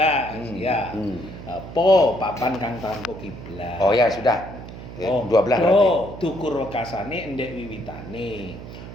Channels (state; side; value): noise; right; hum, 13 dB below the sound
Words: Ya. Po papan kang tanpa kiblat. Oh ya, sudah. 12 berarti. Dukur wekasane endek wiwitane.